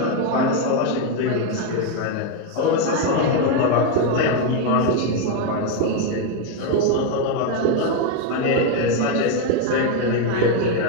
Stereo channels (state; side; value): different; both; correlation 0.02